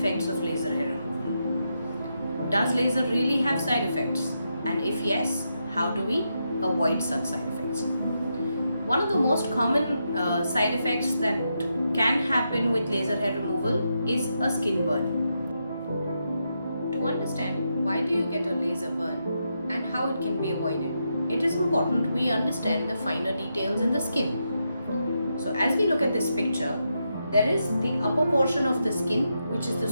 of laser hair removal. Does laser really have side effects? And if yes, how do we avoid such side effects? One of the most common side effects that can happen with laser hair removal is a skin burn. To understand why do you get a laser burn and how it can be avoided, it is important we understand the finer details in the skin. So as we look at this picture, there is the upper portion of the skin, which is the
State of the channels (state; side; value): inverted; both; correlation -0.84